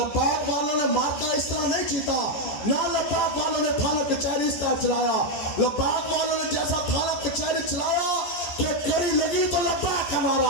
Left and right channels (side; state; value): right; late; 14 ms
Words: والوں نے مارکا اس طرح نہیں جیتا، نہ لبیک والوں نے تھانہ کچہری اس طرح چلایا. لبیک والوں نے جیسا تھانہ کچہری چلایا کہ کڑی لگی تو لبیک کا